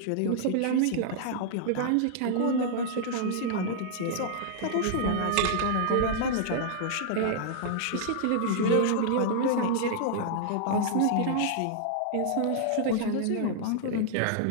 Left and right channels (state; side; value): different; both; correlation -0.01